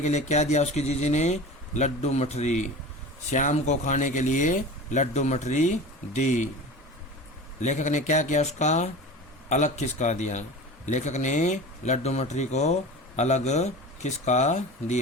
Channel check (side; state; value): both; normal; correlation 0.33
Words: के लिए क्या दिया उसकी जीजी ने? लड्डू मठरी। श्याम को खाने के लिए लड्डू मठरी दी। लेखक ने क्या किया? उसका अलग खिसका दिया। लेखक ने लड्डू मठरी को अलग खिसका